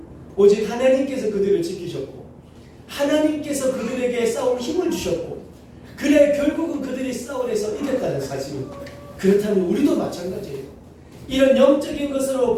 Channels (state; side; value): identical; both; correlation 1.00